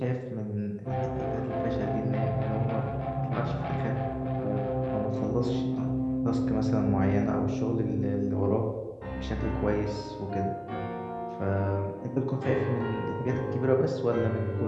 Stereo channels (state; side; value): identical; both; correlation 1.00